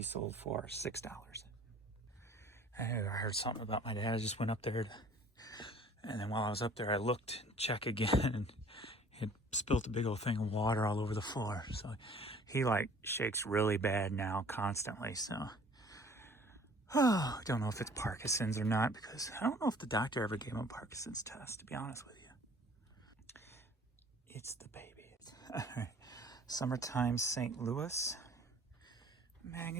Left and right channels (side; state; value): both; normal; correlation 0.52